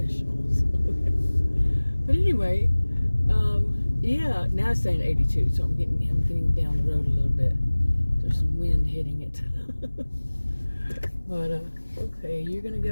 But anyway, yeah, now it's saying 82, so I'm getting down the road a little bit. There's some wind hitting it. But okay, you're gonna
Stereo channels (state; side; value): inverted; both; correlation -1.00